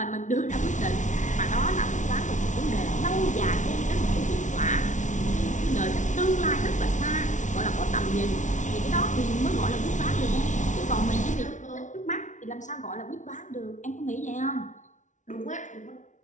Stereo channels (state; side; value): late; right; 0.36 ms